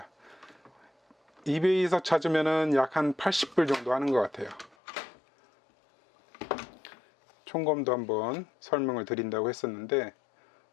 이베이에서 찾으면은 약 한 80불 정도 하는 것 같아요. 총검도 한번 설명을 드린다고 했었는데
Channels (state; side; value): drops out; right; at 4.8 s